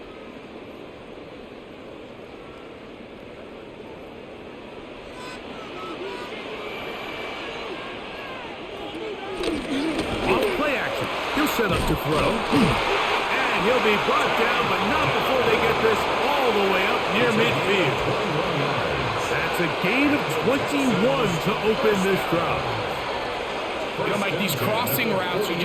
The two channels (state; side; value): identical; both; correlation 1.00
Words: Set up to throw, and he'll be brought down, but not before they get this all the way up near midfield. That's a gain of 21 to open this drive. You know, Mike, these crossing routes, you